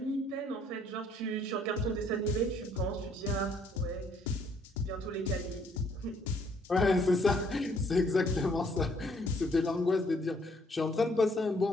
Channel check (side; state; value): both; normal; correlation 0.65